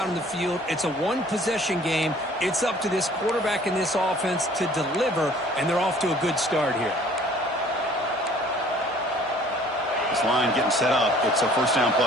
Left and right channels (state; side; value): normal; both; correlation 0.54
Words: in the field. It's a one-possession game. It's up to this quarterback and this offense to deliver, and they're off to a good start here. This line getting set up. It's a first down